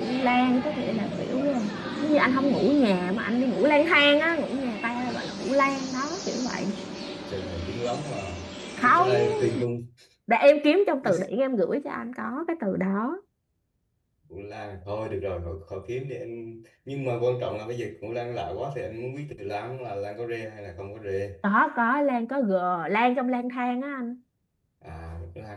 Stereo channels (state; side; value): identical; both; correlation 1.00